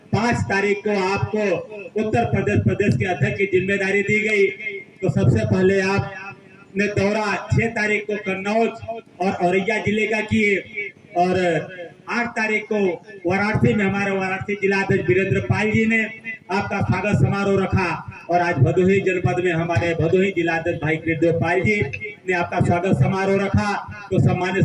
5 तारीख को आपको उत्तर प्रदेश के अध्यक्ष की जिम्मेदारी दी गई, तो सबसे पहले आपने दौरा 6 तारीख को कन्नौज और औरैया जिले का किए और 8 तारीख को वाराणसी में हमारे वाराणसी जिला अध्यक्ष वीरेंद्र पाल जी ने आपका स्वागत समारोह रखा और आज भदोही जनपद में हमारे भदोही जिला अध्यक्ष भाई कृष्णदेव पाल जी ने आपका स्वागत समारोह रखा। तो सम्मानित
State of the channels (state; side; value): identical; both; correlation 1.00